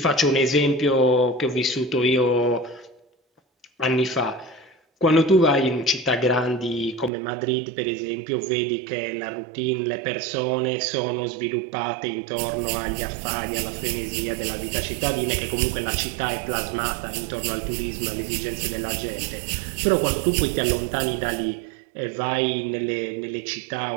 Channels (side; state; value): left; drops out; at 7.1 s